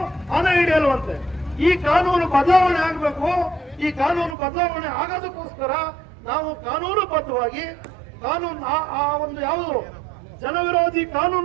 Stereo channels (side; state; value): left; drops out; at 4.4 s